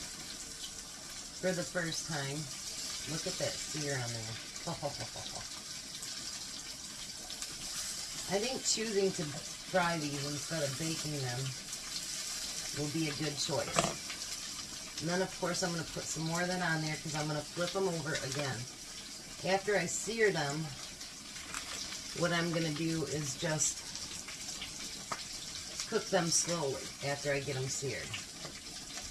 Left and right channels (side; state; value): both; identical; correlation 1.00